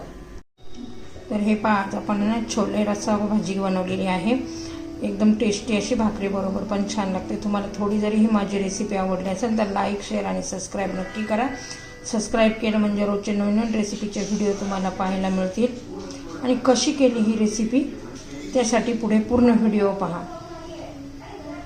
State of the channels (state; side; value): identical; both; correlation 1.00